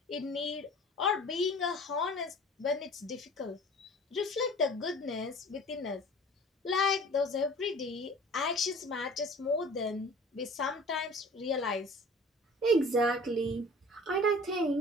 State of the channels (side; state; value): both; normal; correlation 0.45